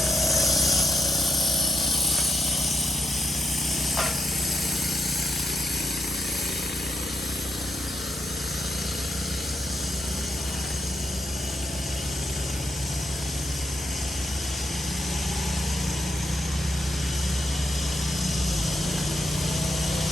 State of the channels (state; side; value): normal; both; correlation 0.81